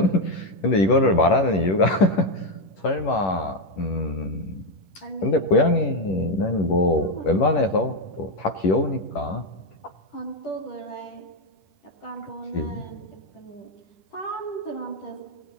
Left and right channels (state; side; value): late; right; 11 ms